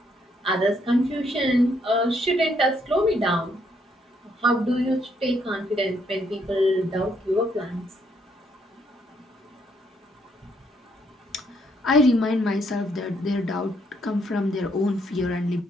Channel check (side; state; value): both; normal; correlation 0.72